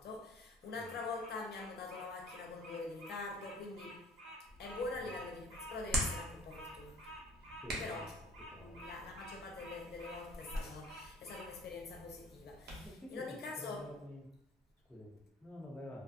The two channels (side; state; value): both; normal; correlation 0.49